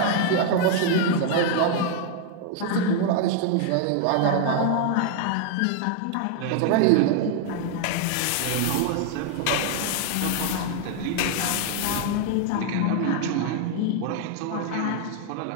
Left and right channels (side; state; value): both; different; correlation 0.00